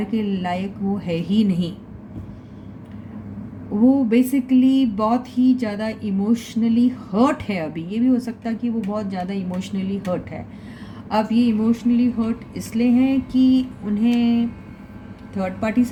के लायक वो है ही नहीं। वो बेसिकली बहुत ही ज़्यादा इमोशनली हर्ट है अभी। ये भी हो सकता है कि वो बहुत ज़्यादा इमोशनली हर्ट है। अब ये इमोशनली हर्ट इसलिए है कि उन्हें थर्ड पार्टी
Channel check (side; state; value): both; identical; correlation 1.00